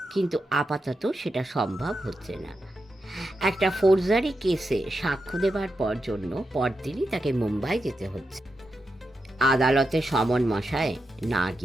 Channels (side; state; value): both; normal; correlation 0.87